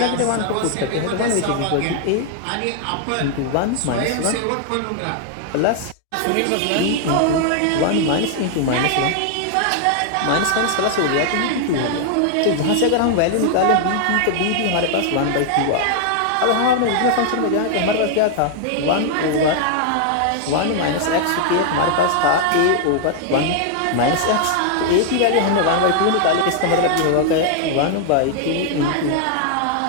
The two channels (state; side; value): different; both; correlation 0.00